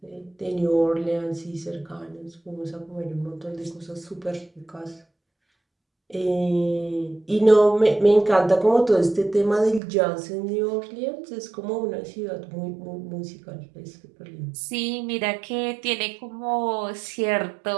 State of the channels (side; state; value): left; drops out; at 9.8 s